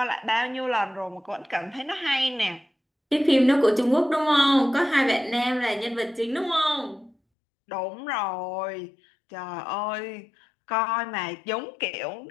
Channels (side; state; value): right; drops out; at 7.2 s